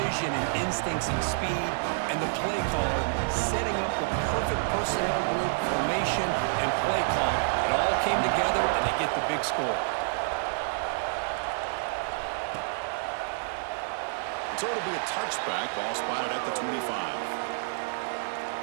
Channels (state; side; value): silent; left; digital silence